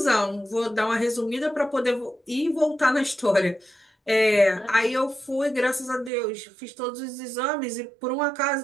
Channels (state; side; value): drops out; left; at 6.1 s